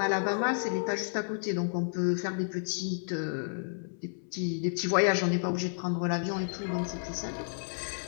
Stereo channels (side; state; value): right; silent; 57 dB below the other